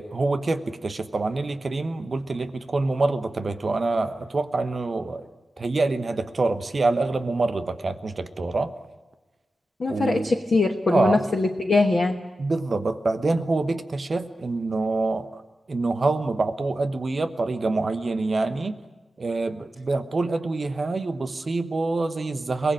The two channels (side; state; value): both; normal; correlation 0.92